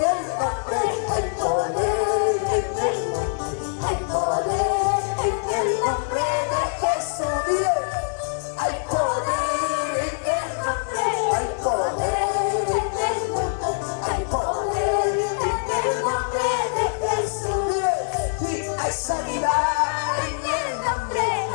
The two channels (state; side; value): silent; right; 63 dB below the other